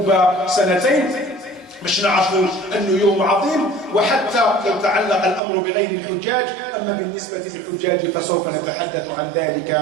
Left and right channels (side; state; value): left; drops out; at 5.4 s